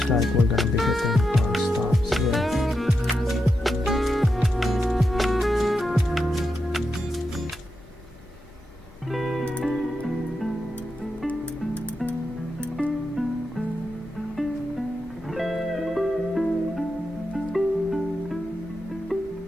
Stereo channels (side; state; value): both; normal; correlation 0.87